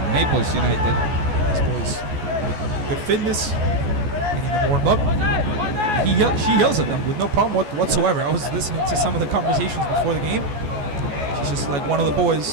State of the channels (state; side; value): late; left; 14 ms